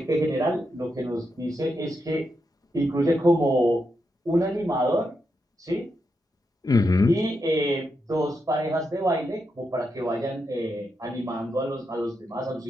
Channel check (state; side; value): normal; both; correlation 0.84